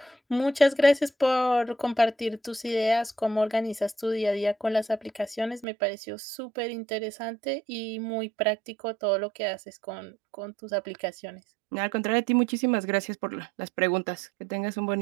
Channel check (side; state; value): left; drops out; at 5.7 s